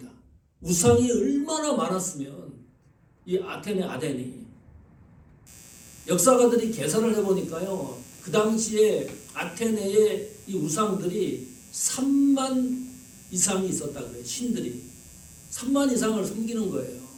우상이 얼마나 많았으면 이 아테네 아덴이 역사가들이 계산을 해보니까요. 그 당시에 아테네의 이 우상들이 3만 이상이 있었다 그래요. 신들이 3만 이상을 섬기는 거예요.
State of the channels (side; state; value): both; identical; correlation 1.00